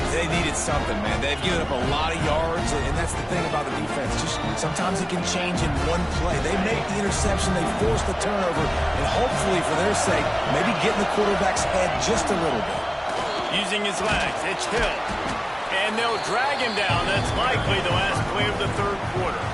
They needed something, man. They've given up a lot of yards, and that's the thing about the defense. Just sometimes it can change in one play. They make the interception, they force the turnover, and hopefully, for their sake, maybe get in the quarterback's head just a little bit. Using his legs, it's Hill. And they'll drag him down. That's likely the last play of the third quarter.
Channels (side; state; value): both; identical; correlation 1.00